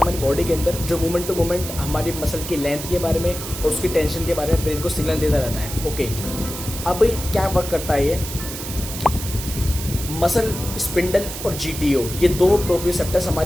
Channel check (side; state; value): right; noise; hiss, 8 dB below the sound